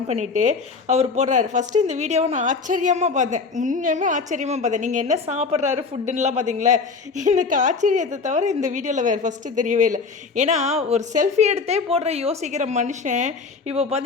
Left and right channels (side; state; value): right; quieter; 4.7 dB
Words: பண்ணிவிட்டு அவர் போடுறாரு. ஃபஸ்ட்டு இந்த வீடியோவை நான் ஆச்சரியமாக பார்த்தேன், உண்மையுமே ஆச்சரியமாக பார்த்தேன். நீங்கள் என்ன சாப்பிட்றாரு ஃபுட்டுன்னெலாம் பார்த்தீங்களா? எனக்கு ஆச்சரியத்தை தவிர இந்த வீடியோவில் வேறு ஃபஸ்ட்டு தெரியவே இல்லை. ஏன்னா ஒரு செல்ஃபி எடுத்தே போடுற யோசிக்கிற மனுஷன் இப்போ